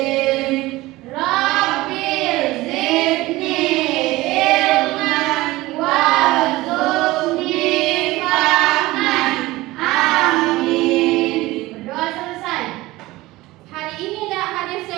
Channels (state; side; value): quieter; left; 19.1 dB